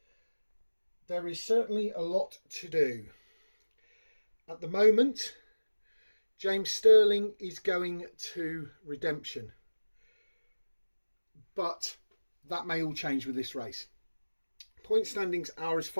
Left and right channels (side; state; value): both; inverted; correlation -1.00